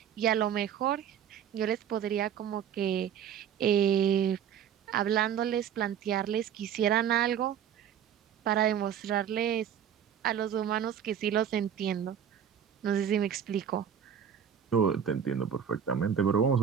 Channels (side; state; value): left; quieter; 8.8 dB